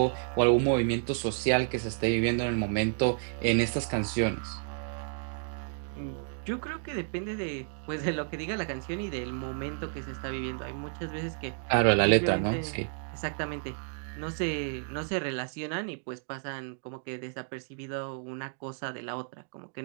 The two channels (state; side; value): silent; left; digital silence